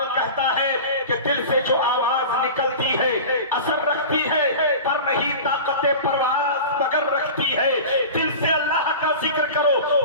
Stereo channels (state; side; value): inverted; both; correlation -0.33